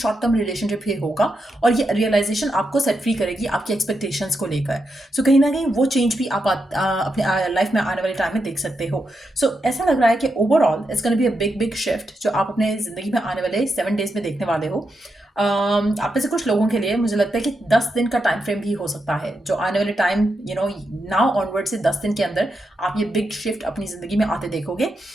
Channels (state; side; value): normal; both; correlation 0.85